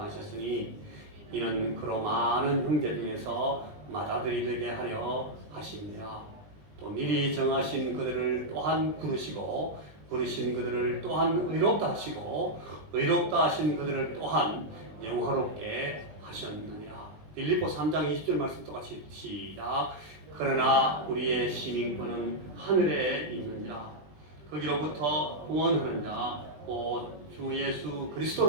이는 그로 많은 형제 중에서 맏아들이 되게 하려 하십니다. 또 미리 정하신 그들을 또한 부르시고 부르신 그들을 또한 의롭다 하시고 의롭다 하신 그들을 또한 영화롭게 하셨느니라. 빌립보 3장 20절 말씀 똑같이 시작. 그러나 우리의 시민권은 하늘에 있느니라. 거기로부터 구원하는 자 곧 주 예수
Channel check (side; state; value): left; late; 20 ms